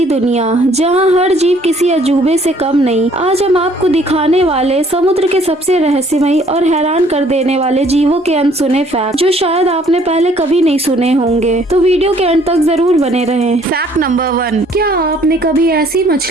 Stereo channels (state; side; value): normal; both; correlation 0.60